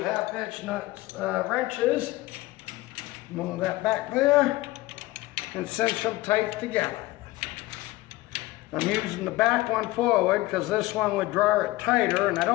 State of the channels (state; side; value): quieter; right; 18.9 dB